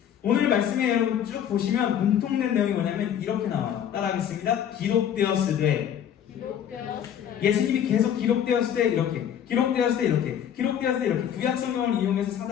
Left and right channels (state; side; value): quieter; right; 9.4 dB